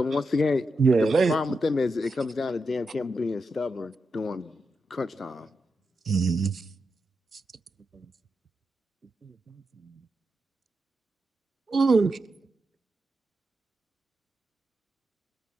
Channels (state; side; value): normal; both; correlation 0.87